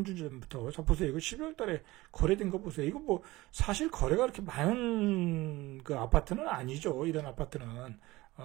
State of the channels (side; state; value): left; quieter; 19.5 dB